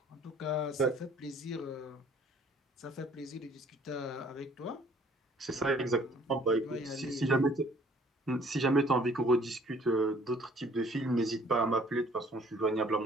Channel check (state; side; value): normal; both; correlation 0.57